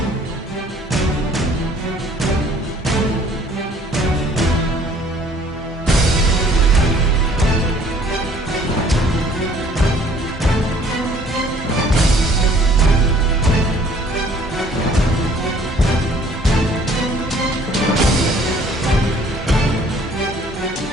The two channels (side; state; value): both; normal; correlation 0.56